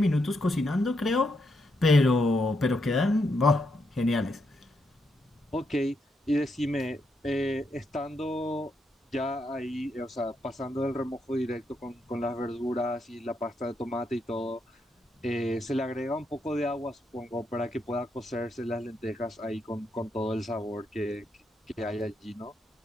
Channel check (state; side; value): normal; both; correlation 0.80